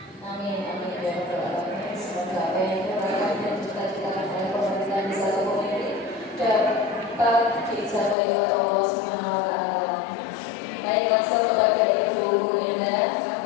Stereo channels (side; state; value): right; drops out; at 8.2 s